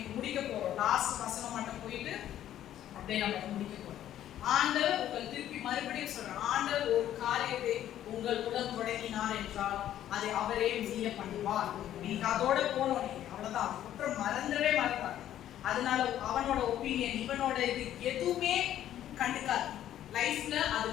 முடிக்க போறோம். லாஸ்ட் வசனம் மட்டும் போயிட்டு அப்படியே நம்ம முடிக்க போறோம். ஆண்டவர் உங்கள் திருப்பி மறுபடியும் சொல்றார், ஆண்டவர் ஒரு காரியத்தை உங்கள் உடன் தொடங்கினார் என்றால் அதை அவரே முடிய பண்ணுவார். நீங்க அதோட போனோம், நீங்க அவ்வளவுதான். குற்றம் மறந்தவே மறந்தார். அதனால அவனோட ஒப்பீனியன், இவனோட இது எதுவுமே கண்டுக்காது. லைஃப்ல அது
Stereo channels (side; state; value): right; quieter; 11.8 dB